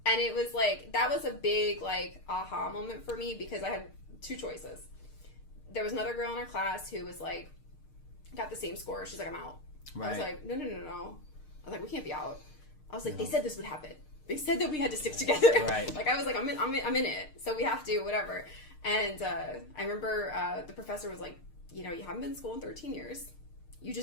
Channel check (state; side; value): late; right; 6.6 ms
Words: And it was like, that was a big like aha moment for me because I had two choices. There was another girl in our class who was like, got the same score. She's like, I'm out. Right. I was like, no. I was like, we can't be out. I was like, they said this would happen. They said that we had to stick together. Right. Like I was like, I'm in it. So we have to, whatever. And I remember the professor was like, you know, you haven't been in school in 13 years. You